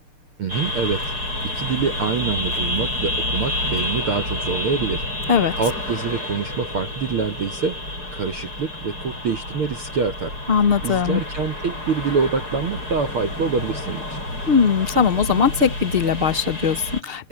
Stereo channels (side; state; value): left; late; 6.6 ms